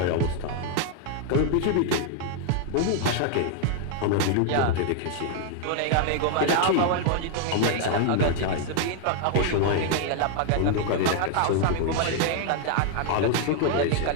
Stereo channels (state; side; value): different; both; correlation 0.00